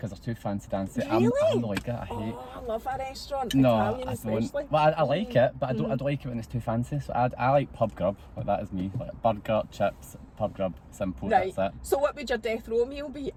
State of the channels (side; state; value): both; identical; correlation 1.00